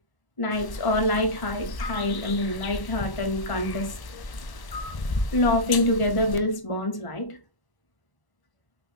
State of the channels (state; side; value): late; right; 1.0 ms